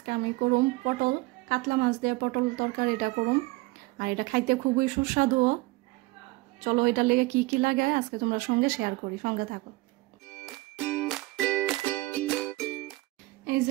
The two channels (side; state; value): left; quieter; 21.7 dB